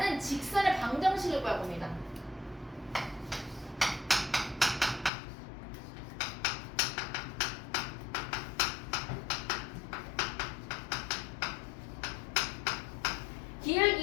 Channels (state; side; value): drops out; right; at 5.1 s